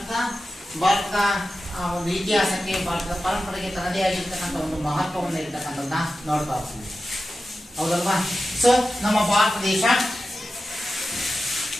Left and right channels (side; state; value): both; normal; correlation 0.93